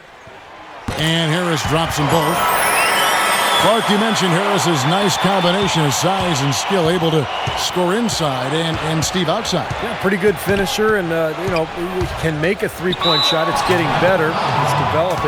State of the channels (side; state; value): both; identical; correlation 1.00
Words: And Harris drops them both. Clark, you mentioned Harris's nice combination of size and skill, able to score inside and Steve outside. Yeah, pretty good finisher, and you know, he can make a 3-point shot. It's getting better. It's